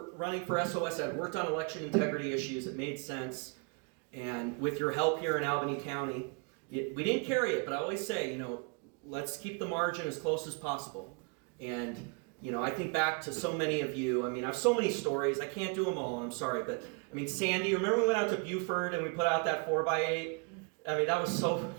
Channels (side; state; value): left; quieter; 34.2 dB